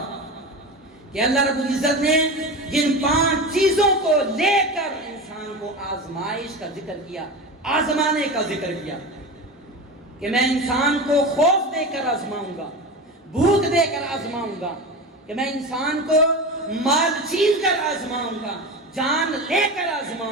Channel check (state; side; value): normal; both; correlation 0.26